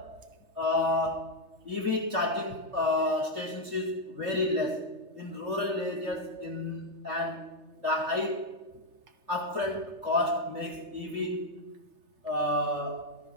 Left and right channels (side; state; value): left; late; 3.3 ms